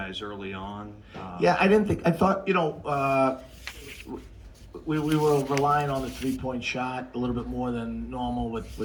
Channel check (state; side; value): identical; both; correlation 1.00